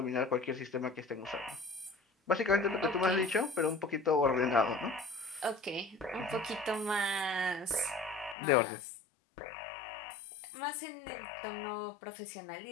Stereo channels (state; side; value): drops out; right; at 8.3 s